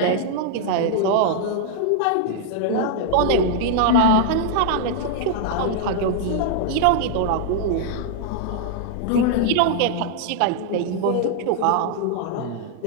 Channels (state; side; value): different; both; correlation 0.00